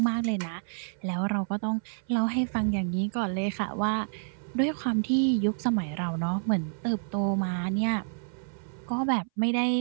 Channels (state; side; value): silent; left; 59 dB below the other